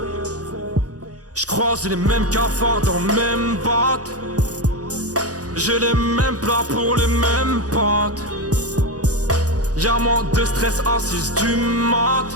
J'croise les mêmes cafards dans le même batte. J'ai les mêmes plats pour les mêmes pâtes. Y'a moins de stress à 6 du mat.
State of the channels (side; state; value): left; late; 0.67 ms